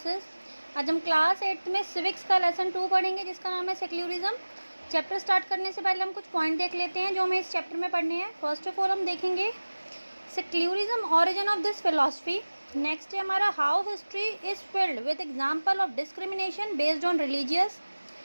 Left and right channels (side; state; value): both; inverted; correlation -1.00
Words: आज हम क्लास 8 में सिविक्स का लेसन 2 पढ़ेंगे जिसका नाम है सेक्युलरिज्म। चैप्टर स्टार्ट करने से पहले हम कुछ पॉइंट देख लेते हैं जो हमें इस चैप्टर में पढ़ने हैं। फर्स्ट ऑफ ऑल हम देखेंगे secularism, origin of this philosophy. Next है हमारा how history is filled with example of discrimination based on religious.